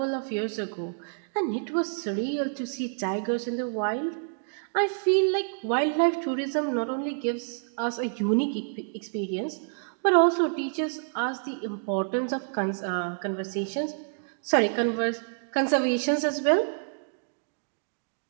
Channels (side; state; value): left; silent; digital silence